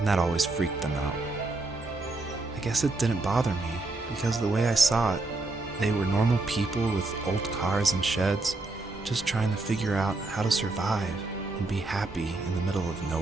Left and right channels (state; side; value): quieter; left; 3.2 dB